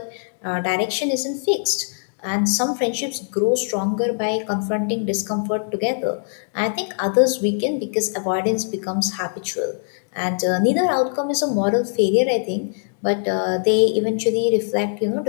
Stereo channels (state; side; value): silent; right; digital silence